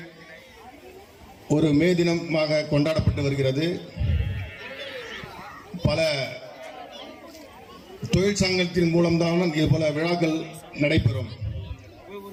ஒரு மே தினமாக கொண்டாடப்பட்டு வருகிறது. பல தொழிற்சங்கத்தின் மூலம்தான் இது போல விழாக்கள் நடைபெறும்.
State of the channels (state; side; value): identical; both; correlation 1.00